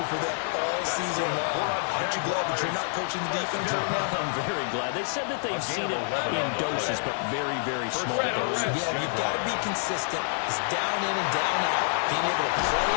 for them all season long. Aren't you glad that you're not coaching the defense right now? I'm very glad. They said that they've seen it in doses, but very, very small doses. Yeah, you've got to be consistent. It's down in and down out. Being able to play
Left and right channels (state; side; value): silent; right; digital silence